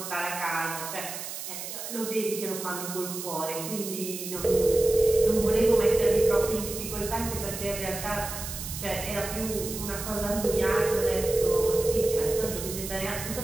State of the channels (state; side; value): noise; right; hiss, 8 dB below the sound